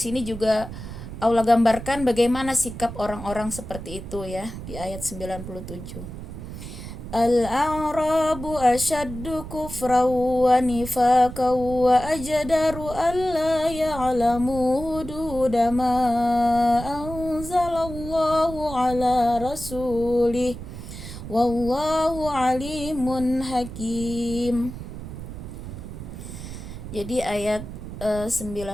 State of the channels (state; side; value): noise; right; rumble, 10 dB below the sound